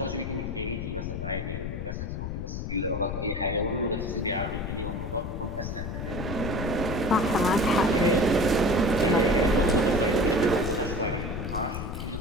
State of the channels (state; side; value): noise; left; rumble, 5 dB below the sound